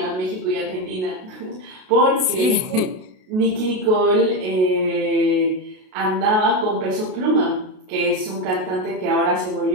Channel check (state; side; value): late; left; 32 ms